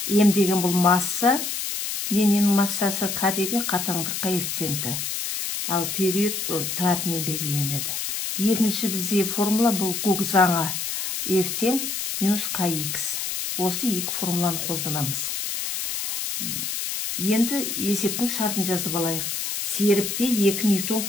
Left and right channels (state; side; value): noise; left; hiss, 3 dB below the sound